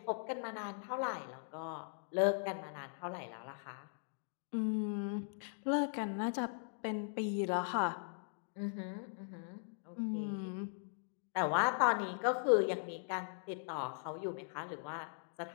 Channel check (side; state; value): right; silent; digital silence